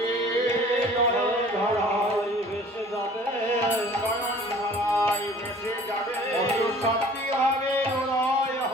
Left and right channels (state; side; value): normal; both; correlation 0.49